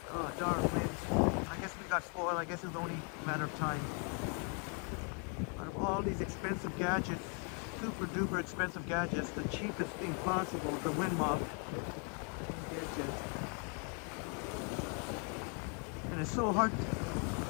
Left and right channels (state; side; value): quieter; right; 36.6 dB